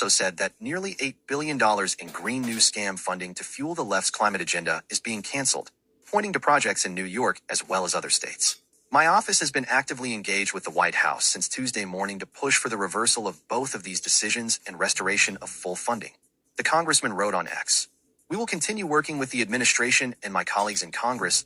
said that nearly $8 billion in green new scam funding to fuel the left's climate agenda is being canceled, pointing to projects in New York as well as other states. My office has been actively engaged with the White House since Tuesday morning to push for the reversal of both of these decisions and restoration of full funding. The congressman wrote on X. We will continue working with the administration and my colleagues in Congress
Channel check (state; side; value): identical; both; correlation 1.00